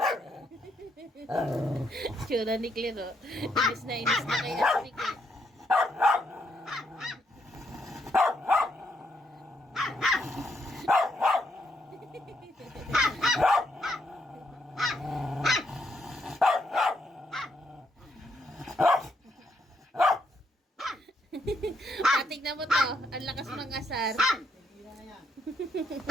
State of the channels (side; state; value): both; normal; correlation 0.76